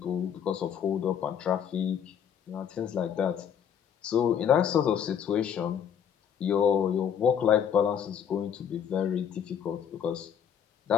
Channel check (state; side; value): quieter; right; 8.3 dB